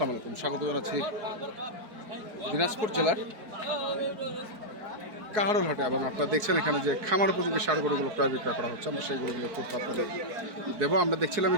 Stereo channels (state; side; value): late; left; 4.7 ms